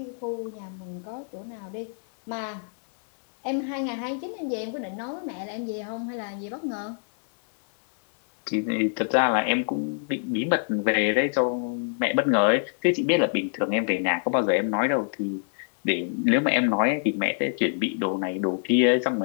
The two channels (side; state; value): right; silent; 61 dB below the other